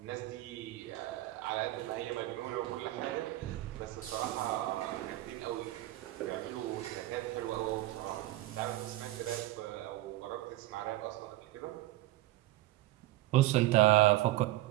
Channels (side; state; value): left; quieter; 16.5 dB